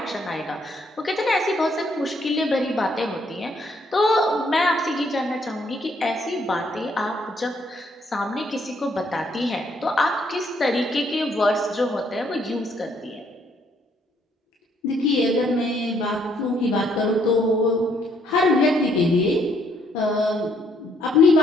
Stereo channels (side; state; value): both; normal; correlation 0.69